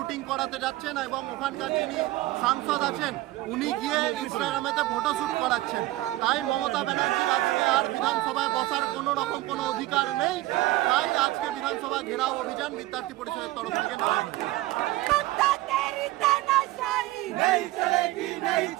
করাতে যাচ্ছেন এবং ওখানকার যিনি সাংসদ আছেন উনি গিয়ে ইনস্টাগ্রামেতে ফটোশ্যুট করাচ্ছেন। তাই মমতা ব্যানার্জির আজকে আর বিধানসভায় বসার কোনো রকম কোনো অধিকার নেই। তাই আজকে বিধানসভা ঘেরাও অভিযান বিদ্যার্থী পরিষদের তরফ থেকে নেওয়া হয়েছে। नहीं चलेगी नहीं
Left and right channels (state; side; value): quieter; left; 17.6 dB